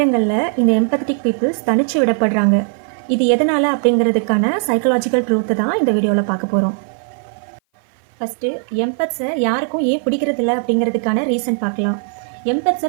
இந்த எம்பத்தட்டிக் பீப்புள்ஸ் தனிச்சு விடப்படுறாங்க. இது எதனால் அப்படிங்கிறதுக்கான சைக்கலாஜிக்கல் ட்ரூத்தை தான் இந்த வீடியோவில் பார்க்க போகிறோம். ஃபஸ்ட்டு எம்பத்ஸை யாருக்கும் ஏன் பிடிக்கிறதில்ல அப்படிங்கிறதுக்கான ரீசன் பார்க்கலாம். எம்பத்ஸை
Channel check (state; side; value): silent; left; 57 dB below the other